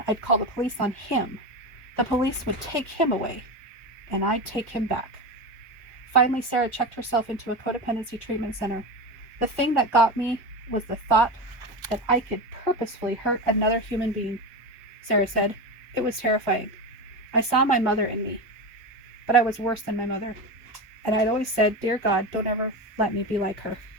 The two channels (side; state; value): both; normal; correlation 0.22